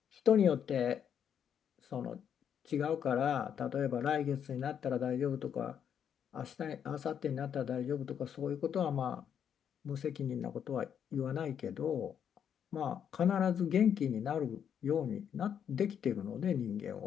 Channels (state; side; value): quieter; right; 8.4 dB